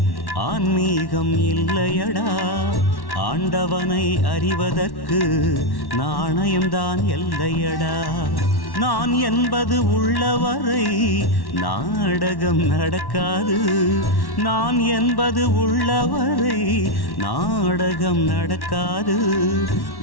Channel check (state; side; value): late; right; 1.1 ms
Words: ஆன்மீகம் இல்லையடா, ஆண்டவனை அறிவதற்கு நாணயம்தான் எல்லையடா. நான் என்பது உள்ளவரை நாடகம் நடக்காது, நான் என்பது உள்ளவரை நாடகம் நடக்காது.